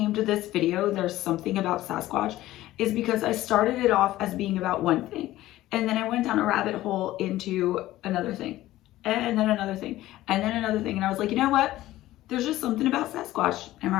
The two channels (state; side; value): quieter; right; 15.6 dB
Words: this video "There's Something About Sasquatch" is because I started it off as being about one thing, and then I went down a rabbit hole into another thing, and then another thing, and then another thing. And I was like, you know what? There's just something about Sasquatch. Am